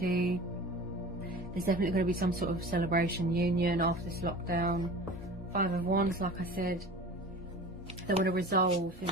There's definitely going to be some sort of celebration, union after this lockdown. Five of Wands, like I said, they want to resolve, you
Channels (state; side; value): normal; both; correlation 0.38